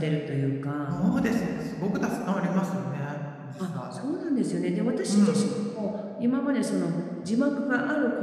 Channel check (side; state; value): both; identical; correlation 1.00